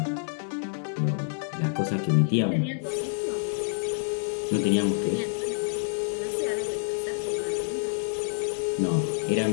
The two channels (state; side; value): silent; right; digital silence